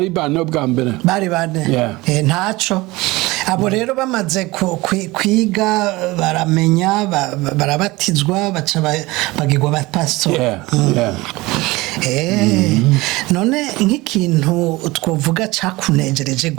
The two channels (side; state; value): left; quieter; 21.1 dB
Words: bane ubwa mbere bari bane ntaco abo rero bamaze kwiga baramenya barabatizwa baca bagirwa abapastori none nk'ikintu twovuga cakunejereje